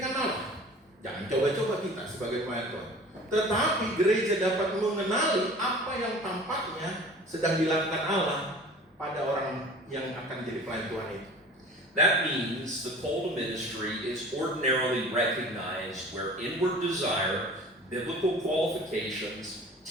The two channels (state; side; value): normal; both; correlation 0.43